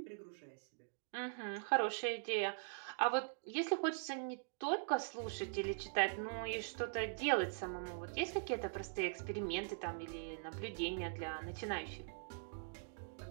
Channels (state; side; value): silent; left; digital silence